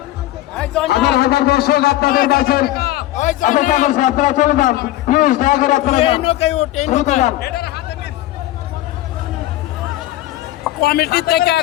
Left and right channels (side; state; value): right; quieter; 15.3 dB